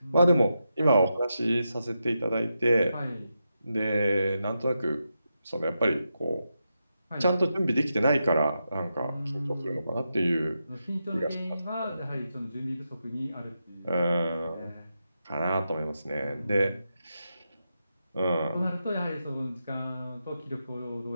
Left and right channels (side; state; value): both; inverted; correlation -0.87